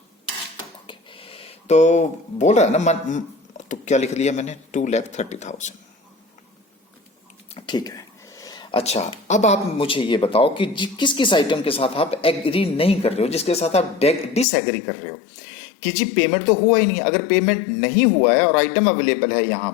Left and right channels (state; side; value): drops out; right; at 14.5 s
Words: ओके, तो बोल रहा है ना तो क्या लिख लिया मैंने, 2,30,000। ठीक है। अच्छा, अब आप मुझे ये बताओ कि किस किस आइटम के साथ आप एग्री नहीं कर रहे हो, जिसके साथ आप डिसएग्री कर रहे हो कि जी पेमेंट तो हुआ ही नहीं। अगर पेमेंट नहीं हुआ है और आइटम अवेलेबल है यहां